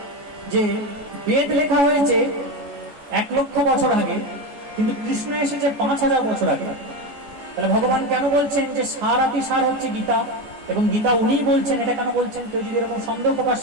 যে বেদ লেখা হয়েছে 1 লক্ষ বছর আগে, কিন্তু কৃষ্ণ এসেছে 5000 বছর আগে, তাহলে ভগবান কেন বলছেন যে সার আতি সার হচ্ছে গীতা, এবং গীতা উনিই বলছেন, এটা কেন বলছেন? কেউ যদি এরকম সন্দেহ প্রকাশ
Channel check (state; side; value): late; left; 14 ms